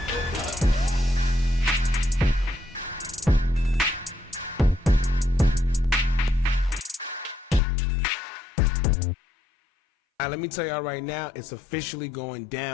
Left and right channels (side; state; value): right; drops out; at 7.6 s